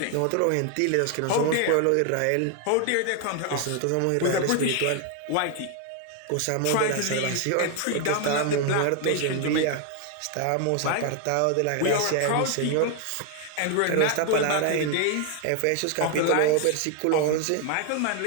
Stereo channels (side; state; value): both; different; correlation 0.01